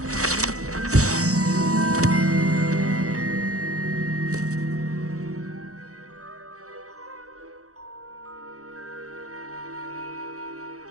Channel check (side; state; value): left; late; 0.65 ms